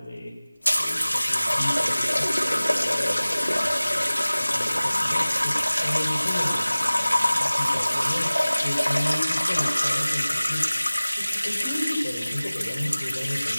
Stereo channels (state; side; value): inverted; both; correlation -0.98